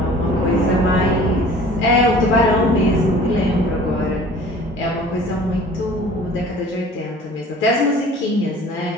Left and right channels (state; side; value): normal; both; correlation 0.47